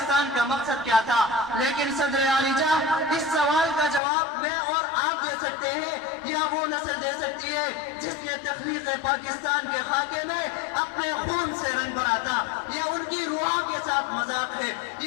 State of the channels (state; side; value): drops out; right; at 4.0 s